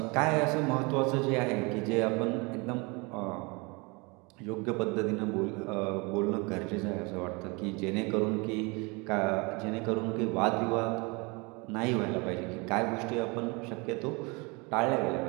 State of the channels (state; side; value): quieter; left; 28.3 dB